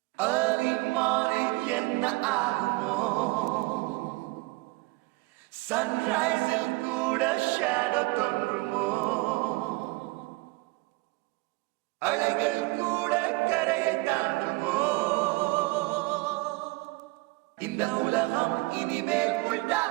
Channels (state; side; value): quieter; left; 23.9 dB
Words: Early morning என்ன ஆகுமோ சன்ரைஸில் கூட ஷேடோ தோன்றுமோ அலைகள் கூட கரையை தாண்டுமோ இந்த உலகம் இனிமேல் உள்டா